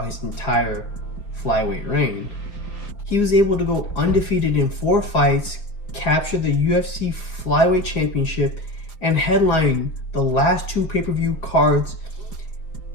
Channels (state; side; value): late; right; 5.1 ms